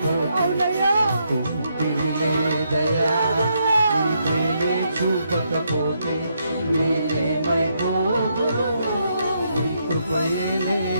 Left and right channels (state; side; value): inverted; both; correlation -0.77